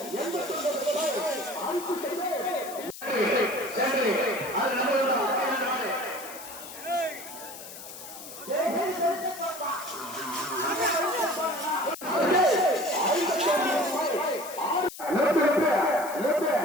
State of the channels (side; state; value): left; noise; hiss, 13 dB below the sound